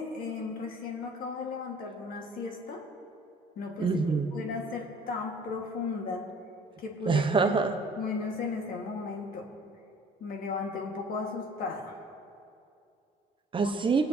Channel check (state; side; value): normal; both; correlation 0.52